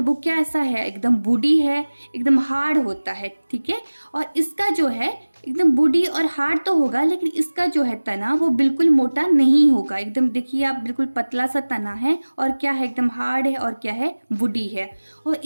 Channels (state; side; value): inverted; both; correlation -1.00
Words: क्या ऐसा है, एकदम वुडी है, एकदम हार्ड होता है, ठीक है। और इसका जो है एकदम वुडी और हार्ड तो होगा, लेकिन इसका जो है तना वो बिल्कुल मोटा नहीं होगा। एकदम देखिए आप, बिल्कुल पतला सा तना है और क्या है, एकदम हार्ड है और क्या है, वुडी है। और